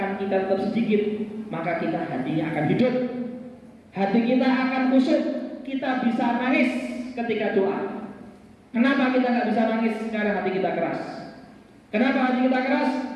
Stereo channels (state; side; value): identical; both; correlation 1.00